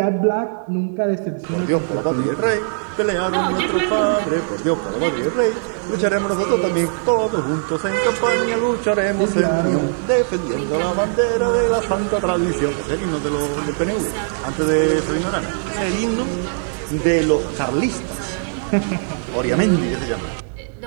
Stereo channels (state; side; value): silent; left; digital silence